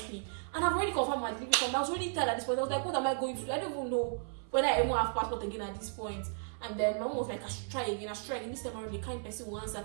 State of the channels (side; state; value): left; silent; 55 dB below the other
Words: And I've already confirmed my delivery company. I was really tired at this point. I was like, what am I going to do? I don't even know whether I even have passport again at this point. And then my mom was like, I should try again. This time around, the kind person who